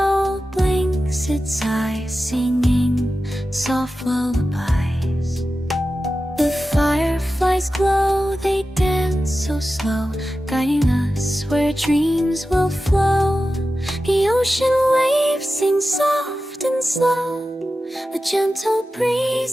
blinks its eyes, singing soft lullabies. The fireflies glow, they dance so slow, guiding us where dreams will flow. The ocean waves sing soft and slow, a gentle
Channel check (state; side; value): normal; both; correlation 0.93